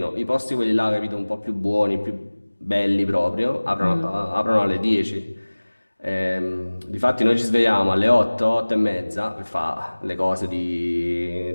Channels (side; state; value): both; inverted; correlation -1.00